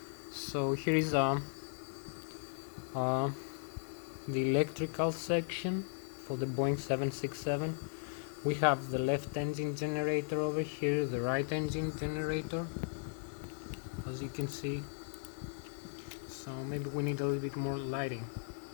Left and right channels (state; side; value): silent; right; 53 dB below the other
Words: So here is the electrical section for the Boeing 767. We have the left engine generator over here, the right engine generator, as you can see. So maybe we need a little bit more lighting